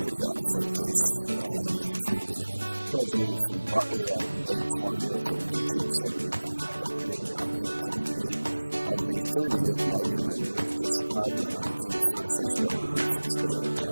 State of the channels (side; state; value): both; inverted; correlation -1.00